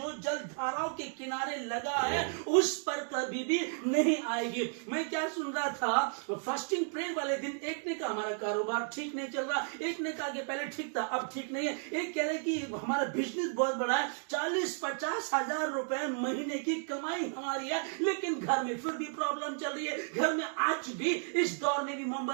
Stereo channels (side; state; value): left; silent; 56 dB below the other